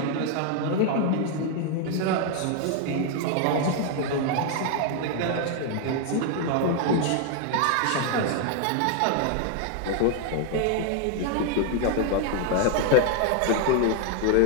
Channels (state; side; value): different; both; correlation 0.00